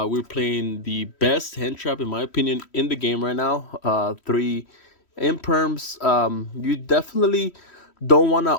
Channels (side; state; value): right; late; 3.1 ms